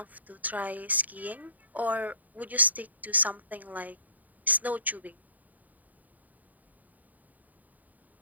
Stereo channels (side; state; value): left; late; 0.078 ms